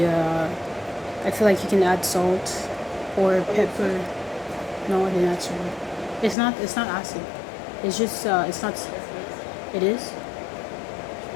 I feel like you can add salt or pepper. No, I didn't add salt. It's not acid. It's just it's not. It is.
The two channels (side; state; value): right; drops out; at 6.4 s